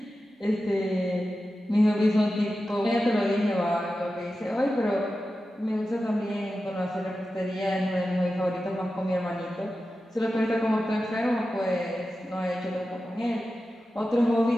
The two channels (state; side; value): normal; both; correlation 0.93